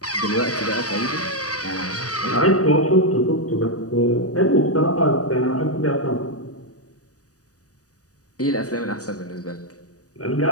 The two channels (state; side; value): late; right; 0.67 ms